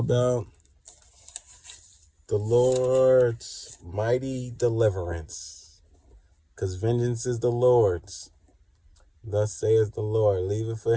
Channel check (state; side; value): identical; both; correlation 1.00